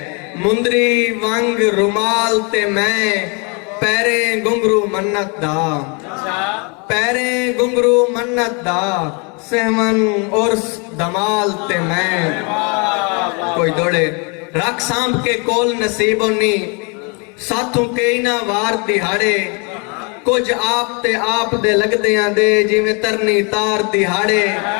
मुंदरी वांग रुमाल ते मैं, पैरे घुंघरू मन्नत दा, पैरे घुंघरू मन्नत दा, सहमन और दमाल ते मैं। कोई दौड़े रख सांभ के कोल नसीबो नी, साथों कई ना वार दिहाड़े, कुछ आप ते आप दे लगदियां दे जिवें तरनी तार दिहाड़े।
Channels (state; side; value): quieter; right; 33.2 dB